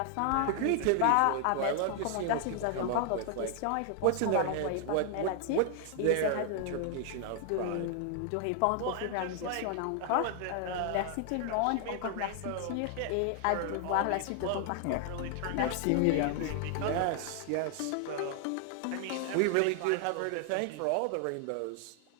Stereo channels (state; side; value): different; both; correlation 0.00